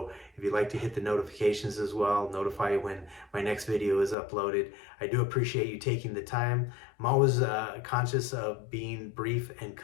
if you'd like to hit the notifications as well, notify you when my next video is uploaded. I do appreciate you taking the time. I'm always conscious of being brief and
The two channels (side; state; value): right; drops out; at 4.2 s